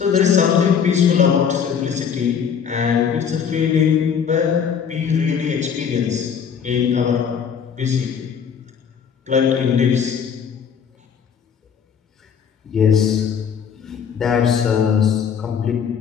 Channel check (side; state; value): right; quieter; 7.3 dB